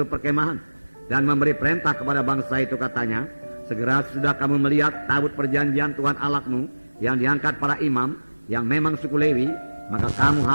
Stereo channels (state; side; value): inverted; both; correlation -1.00